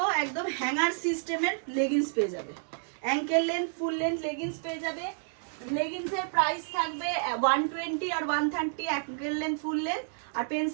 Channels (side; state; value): left; silent; digital silence